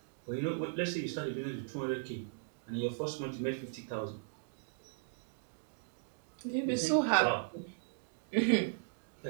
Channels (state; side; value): silent; left; digital silence